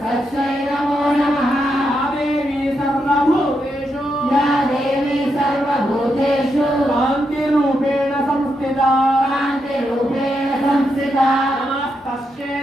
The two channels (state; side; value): normal; both; correlation 0.82